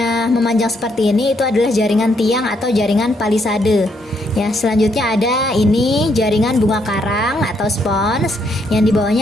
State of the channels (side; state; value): both; normal; correlation 0.74